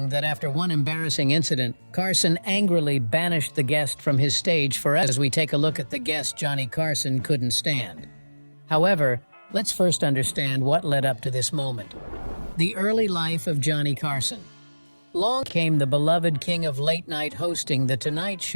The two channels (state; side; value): inverted; both; correlation -1.00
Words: that after one embarrassing incident, Carson angrily banished the guest from his stage forever. As we take a look at the guest Johnny Carson couldn't stand. However, let's first understand what led up to this moment. The early life of Johnny Carson. Long came the beloved king of late night hosting The Tonight